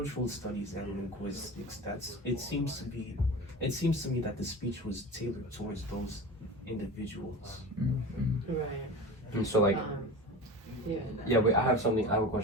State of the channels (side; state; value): both; normal; correlation 0.31